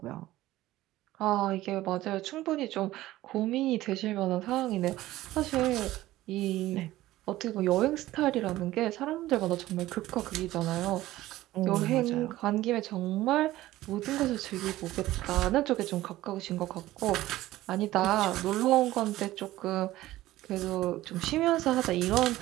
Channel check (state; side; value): quieter; left; 16.1 dB